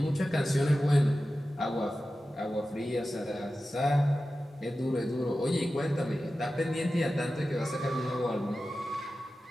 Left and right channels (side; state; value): both; normal; correlation 0.94